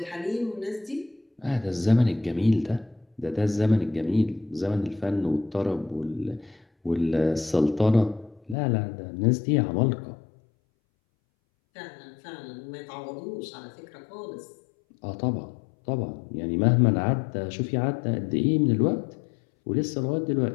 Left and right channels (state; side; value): drops out; right; at 8.6 s